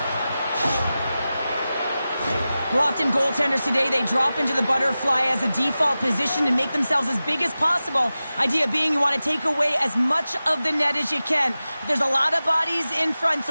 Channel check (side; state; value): both; inverted; correlation -0.95